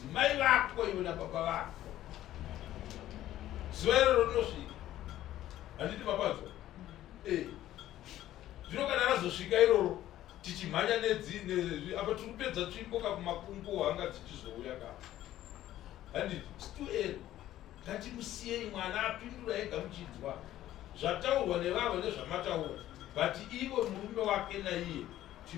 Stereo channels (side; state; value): right; quieter; 13.4 dB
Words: mai vako iwe nababa vako zuva iroro rinosvika handiti mapadzo zvino kana razosvika iroro tichimhanya apa tiri kupedza tsvimboka kumakungu hanga dzichizouya ka handiti situeri ngatimusiyei mwana apindura ega muchinzwa zvataurwa nevavo nezvamataura but ivo murume wake naiye